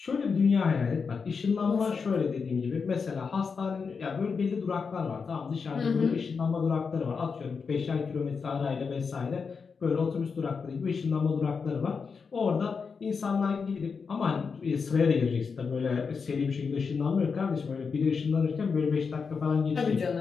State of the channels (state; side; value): quieter; right; 5.4 dB